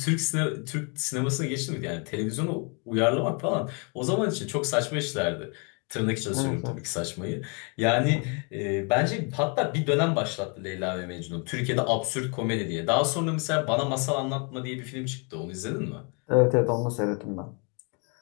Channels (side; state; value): right; quieter; 35.3 dB